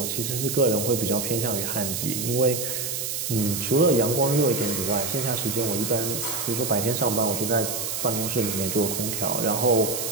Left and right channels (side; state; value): right; noise; hiss, 3 dB below the sound